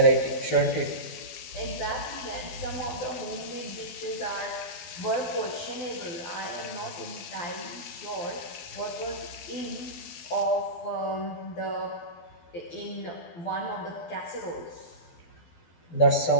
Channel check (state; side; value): late; right; 12 ms